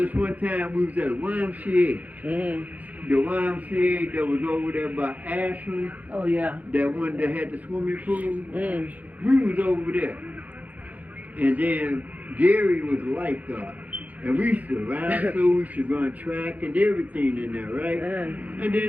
one time, we was at a YMCA. The YMCA that was over there by Ashland. Oh, yeah. That one that had the swimming pool. We was over there. And then Gary was a lifeguard. And we used to ride through, we used to run track and everything in there, right? And then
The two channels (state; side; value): late; left; 0.078 ms